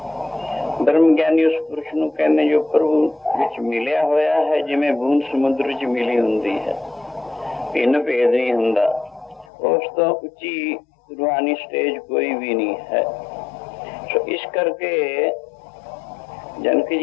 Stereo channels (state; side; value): drops out; right; at 9.5 s